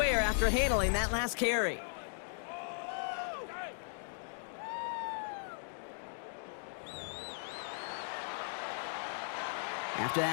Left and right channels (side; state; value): right; silent; digital silence